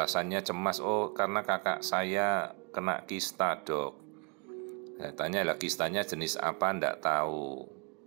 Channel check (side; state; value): left; quieter; 34.3 dB